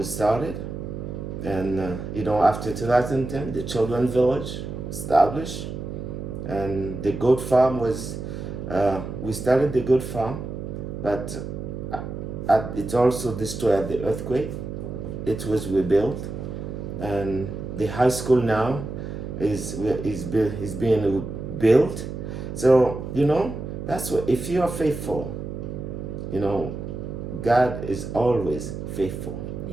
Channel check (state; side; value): noise; right; hum, 7 dB below the sound